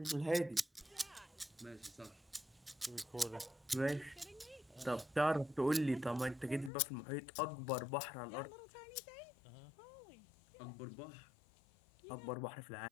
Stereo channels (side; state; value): right; drops out; at 6.7 s